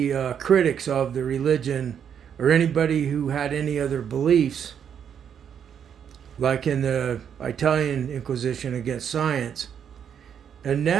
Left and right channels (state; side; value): quieter; left; 8.2 dB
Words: critics of the religion or anybody who had any other beliefs, like in the Italian Inquisition against science. And